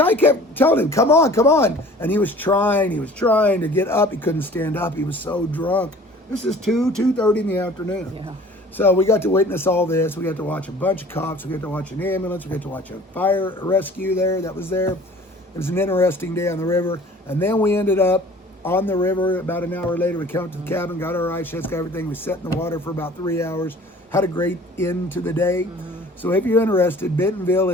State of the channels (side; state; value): both; normal; correlation 0.48